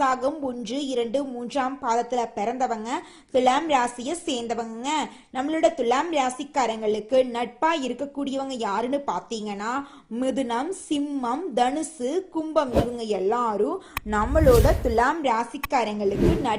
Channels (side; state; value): both; identical; correlation 1.00